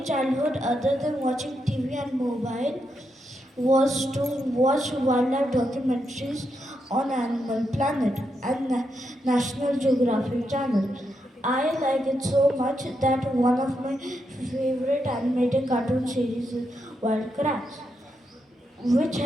childhood, other than watching TV and mobile, was to watch wildlife documentaries on Animal Planet and National Geographic Channel. I like it so much that one of my favorite animated cartoon series is Wild Kratts, which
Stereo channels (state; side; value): normal; both; correlation 0.83